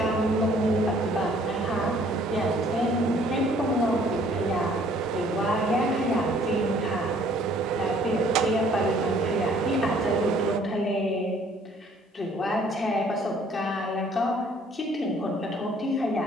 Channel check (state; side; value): normal; both; correlation 0.59